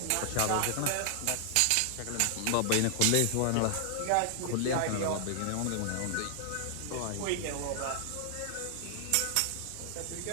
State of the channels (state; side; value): different; both; correlation -0.01